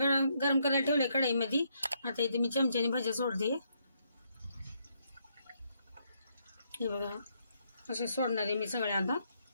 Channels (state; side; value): inverted; both; correlation -0.75